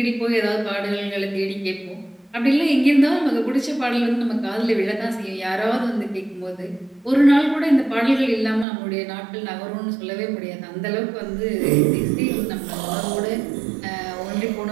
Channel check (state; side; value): drops out; left; at 8.7 s